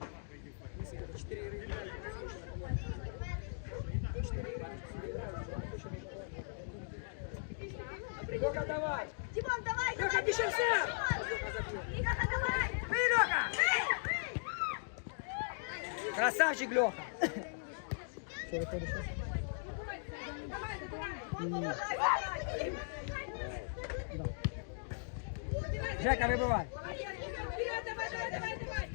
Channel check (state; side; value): silent; right; digital silence